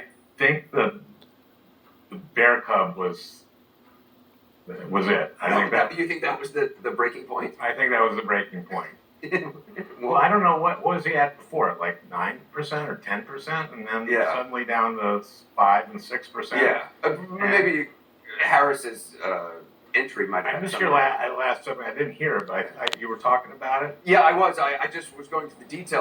think the bear cub was it. You think that was the breaking point? I think that was the breaking point. Well, I don't know what was he at before, like 9% or 10%, and then suddenly down to 5 and 6%. Yeah, maybe Harris's entry might have. I missed your last segment. I didn't hear it, but you were talking about it. Yeah, I was. I just was going to the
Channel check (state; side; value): identical; both; correlation 1.00